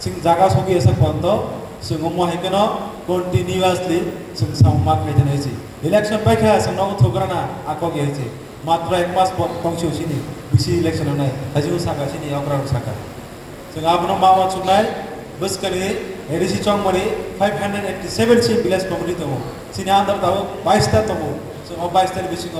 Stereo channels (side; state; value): both; identical; correlation 1.00